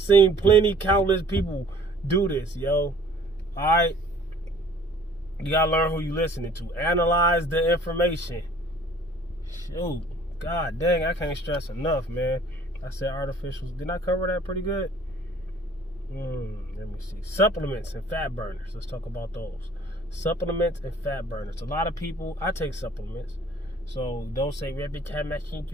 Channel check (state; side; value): normal; both; correlation 0.53